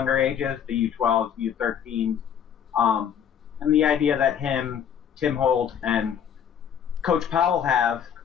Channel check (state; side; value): quieter; right; 8.5 dB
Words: ages, the U12s, U13s, and the idea that Tim Holt, and Coach Powell have